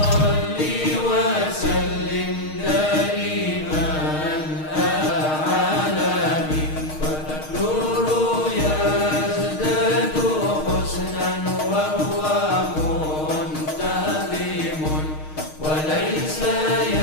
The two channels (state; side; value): late; right; 6.5 ms